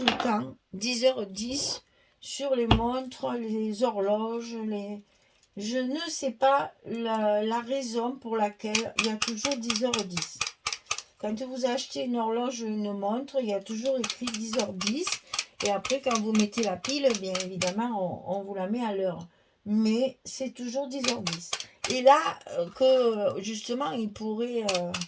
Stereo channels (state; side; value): identical; both; correlation 1.00